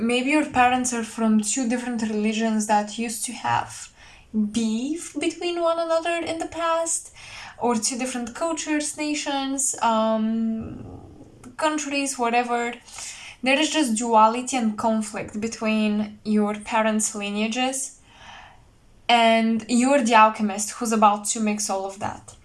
your parents are from two different religions that used to have beef between one another in the past, or two different cultures, nations, countries, whatever. There is just duality and conflict between your parents' lineages, and you're the alchemist who's about to mix all of that.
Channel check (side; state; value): both; identical; correlation 1.00